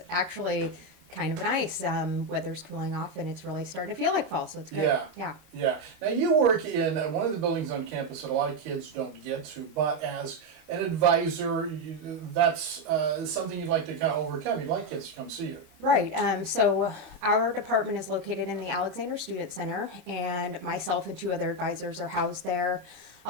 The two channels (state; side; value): late; left; 13 ms